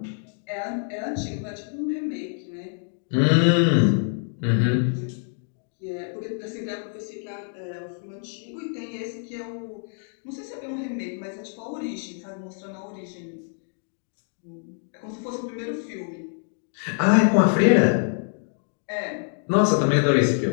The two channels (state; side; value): silent; right; 56 dB below the other